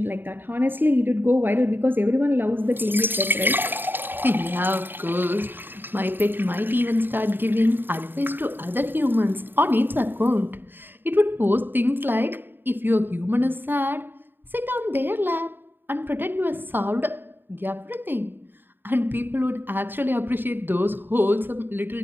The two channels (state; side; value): late; left; 0.095 ms